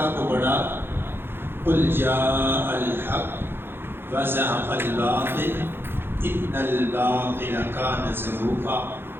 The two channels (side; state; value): left; late; 0.10 ms